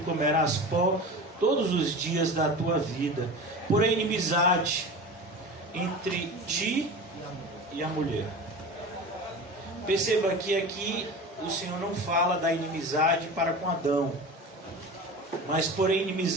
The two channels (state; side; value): normal; both; correlation 0.32